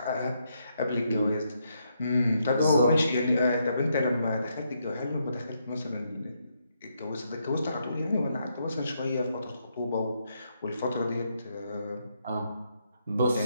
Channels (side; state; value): both; inverted; correlation -0.78